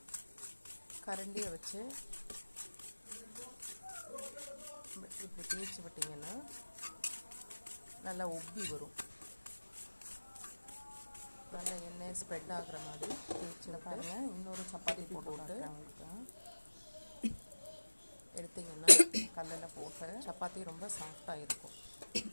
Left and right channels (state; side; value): inverted; both; correlation -1.00